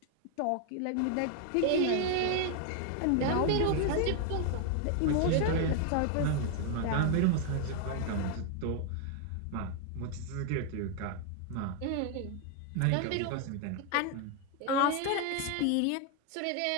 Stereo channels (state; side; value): different; both; correlation 0.00